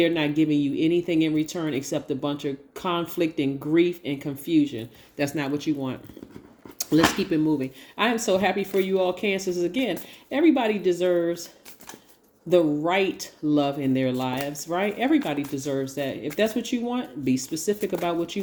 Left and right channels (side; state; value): both; identical; correlation 1.00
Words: not giving you anything in return except a bunch of conflict and grief and confusion. That's not what you want. Let's keep it moving. I am so happy for you all, Cancers. Again, everybody deserves the right love in their lives, right? Everybody deserves that. If that's what you want, be specific about what you